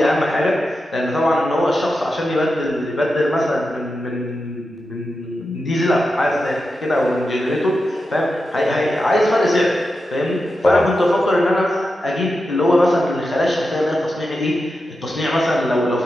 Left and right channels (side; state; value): both; normal; correlation 0.89